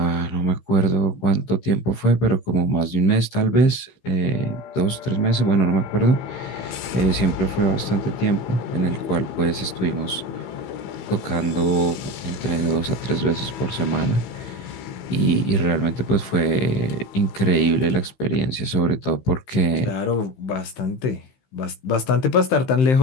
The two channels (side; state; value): right; late; 15 ms